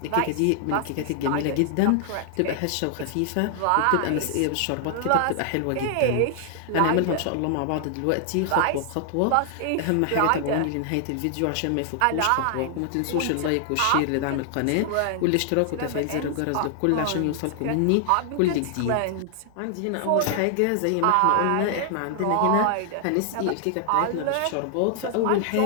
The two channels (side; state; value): both; different; correlation 0.00